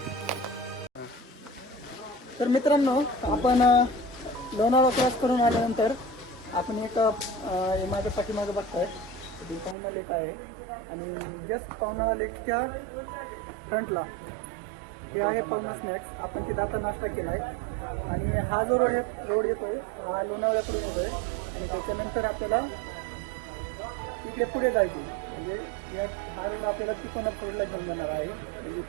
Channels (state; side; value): drops out; left; at 9.8 s